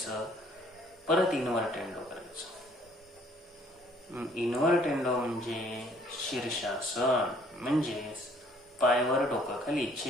परत इन्व्हर्टेंडो करायचं. इन्व्हर्टेंडो म्हणजे शीर्षासन, म्हणजे पायवर डोकं खाली,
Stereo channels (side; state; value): both; normal; correlation 0.60